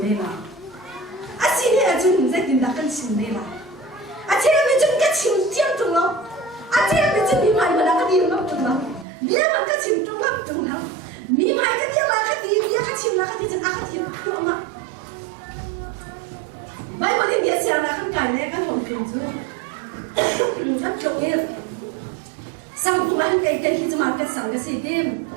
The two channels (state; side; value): drops out; left; at 9.1 s